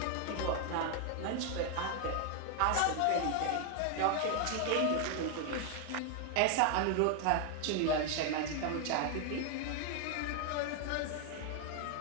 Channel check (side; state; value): both; different; correlation 0.00